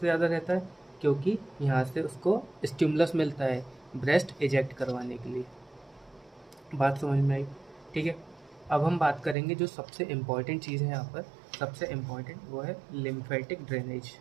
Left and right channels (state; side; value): drops out; left; at 9.3 s